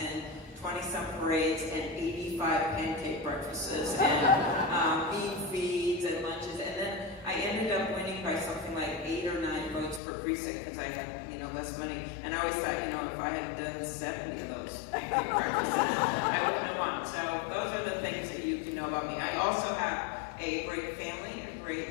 20-some parades and 85 pancake breakfasts and bean feeds and lunches, and then I ended up winning by something like 8 or 9 votes per precinct because I had, less money. And I always thought, if I had done 70 of those pancake breakfasts, I wouldn't have won. So those are the things that you can know about me. I also have a great family, a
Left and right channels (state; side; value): drops out; right; at 10.0 s